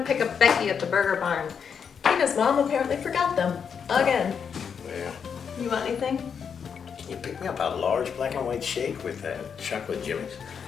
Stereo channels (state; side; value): quieter; right; 6.9 dB